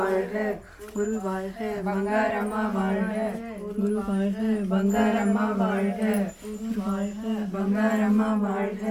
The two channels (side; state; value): both; identical; correlation 1.00